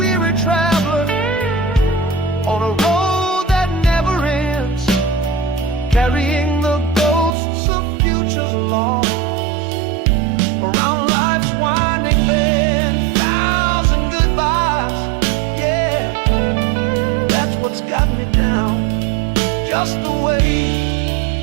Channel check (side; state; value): left; drops out; at 7.4 s